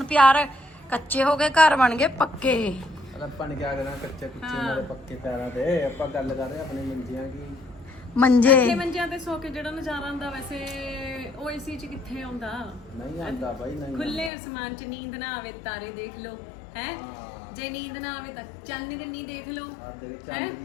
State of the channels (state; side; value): drops out; right; at 14.3 s